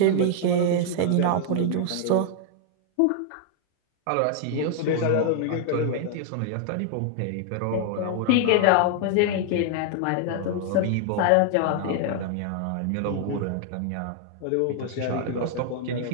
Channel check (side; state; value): both; different; correlation 0.00